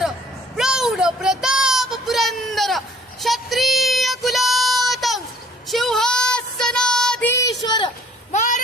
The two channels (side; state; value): both; normal; correlation 0.56